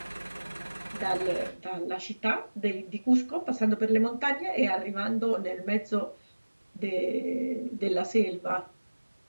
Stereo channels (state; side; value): inverted; both; correlation -1.00